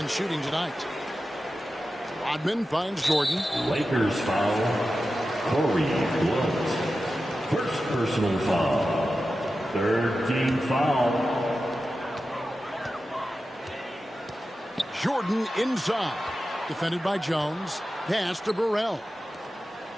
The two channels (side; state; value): both; normal; correlation 0.92